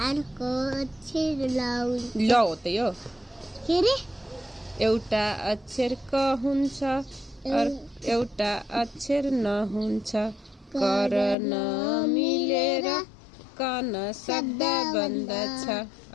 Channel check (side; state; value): right; drops out; at 11.4 s